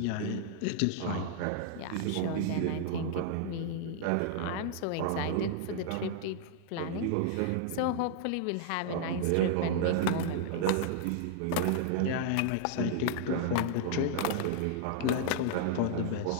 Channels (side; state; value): both; different; correlation -0.01